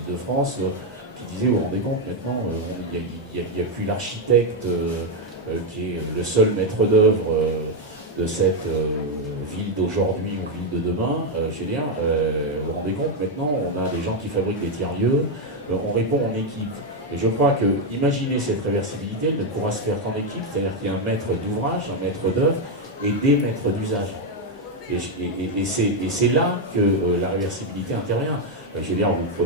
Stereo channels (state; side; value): normal; both; correlation 0.04